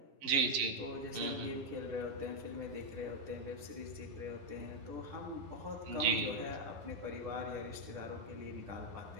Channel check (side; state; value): left; late; 11 ms